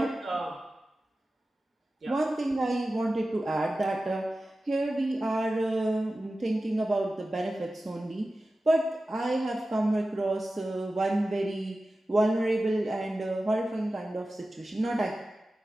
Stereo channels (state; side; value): normal; both; correlation 0.95